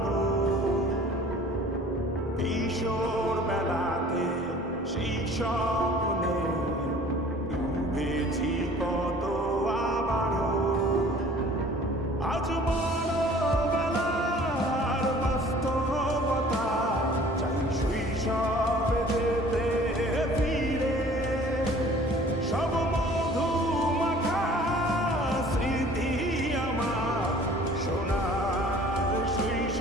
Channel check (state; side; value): normal; both; correlation 0.50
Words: কিশোর বেলাতে সেই স্বপ্নে ডুবেছি কত আবারও। আজ বড়বেলার বাস্তবতা, চাই শৈশবে যেতে ফিরে। সব মধু মাখা স্মৃতি আমার সোনার